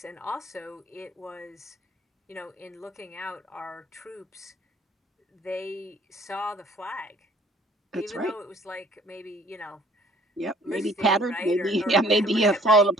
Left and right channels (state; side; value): normal; both; correlation 0.57